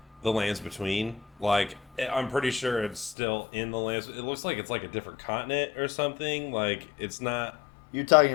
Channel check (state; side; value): drops out; right; at 3.2 s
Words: the Lands Between. Like, I'm pretty sure it's still in the Lands. It looks like it's like a different continent or something. Like, it's not... You're talking